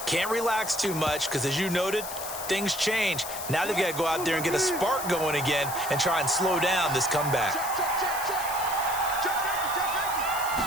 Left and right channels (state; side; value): noise; left; hiss, 8 dB below the sound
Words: Can't relax too much because, as you noted, things change. Now they've got to go out there and get a spark going again and try and slow down this comeback.